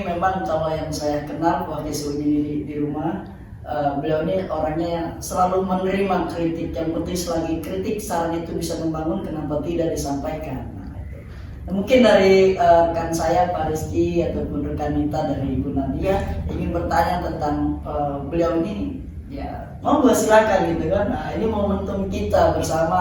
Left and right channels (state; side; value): identical; both; correlation 1.00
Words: memang kalau yang saya kenal waktu ini di rumah, beliau ini orangnya yang selalu menerima kritik. Yang penting selagi kritik saran itu bisa membangun, kenapa tidak disampaikan. Nah, mungkin dari rekan saya Pak Rizky ataupun rekan Nita dari Ibu Nadia ingin bertanya tentang beliau ini, ya mau silakan gitu kan. Nah, ini momentum kita